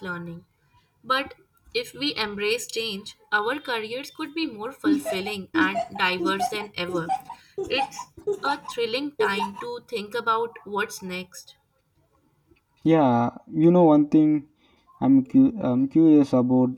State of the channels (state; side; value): identical; both; correlation 1.00